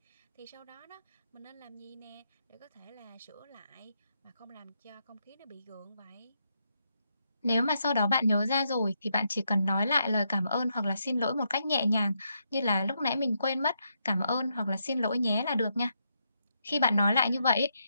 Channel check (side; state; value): both; inverted; correlation -0.79